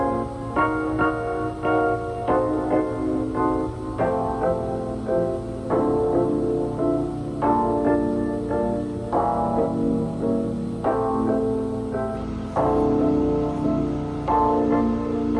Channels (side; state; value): both; identical; correlation 1.00